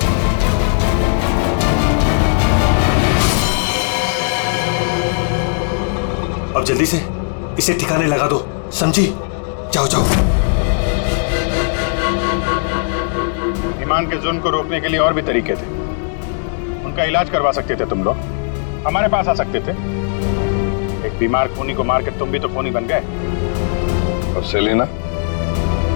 अब जल्दी से इसे ठिकाने लगा दो, समझी? जाओ जाओ। ईमान के जुल्म को रोकने के लिए और भी तरीके थे। उनका इलाज करवा सकते थे तुम लोग, हमारे पास आ सकते थे। एक बीमार खूनी को मार के तुम भी तो खूनी बन गए। और सेलिना,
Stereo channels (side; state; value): right; silent; 67 dB below the other